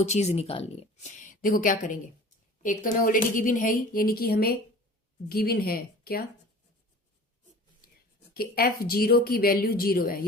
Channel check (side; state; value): both; normal; correlation 0.42